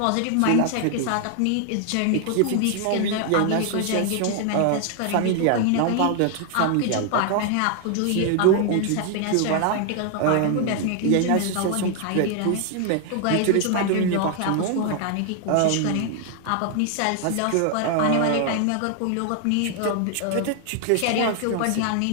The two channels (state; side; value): different; both; correlation 0.00